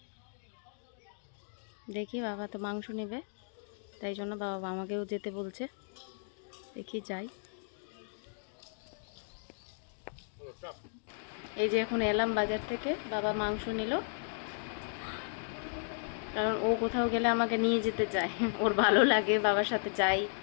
দেখি বাবা তো মাংস নেবে, তাই জন্য বাবা আমাকেও যেতে বলছে, দেখি যাই। এই যে এখন এলাম বাজার থেকে, বাবা মাংস নিল, কারণ ও কোথাও গেলে আমাকে নিয়ে যেতে চায়, ওর ভালো লাগে বাবার সাথে যাই।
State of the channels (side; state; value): right; silent; digital silence